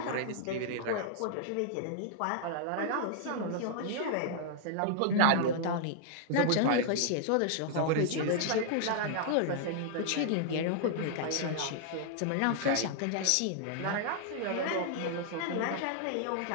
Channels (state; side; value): different; both; correlation -0.01